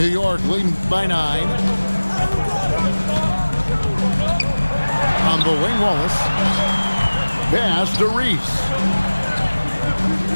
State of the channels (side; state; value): both; inverted; correlation -1.00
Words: York leading by 9. On the wing, Wallace. Pass to Reese.